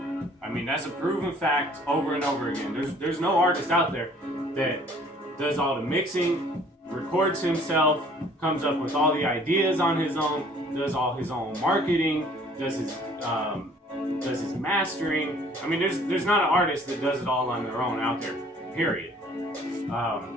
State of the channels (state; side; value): normal; both; correlation 0.56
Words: a proven fact over and over again. There's no artist out there that does all the mixing, records himself, comes up with all the ideas on his own, does all his own marketing, does his mastering. There's not an artist that does it all on their own out there, period.